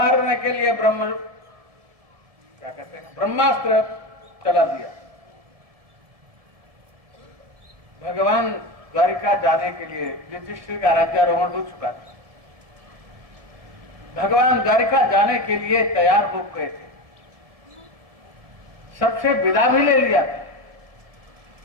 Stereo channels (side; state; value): left; late; 1.7 ms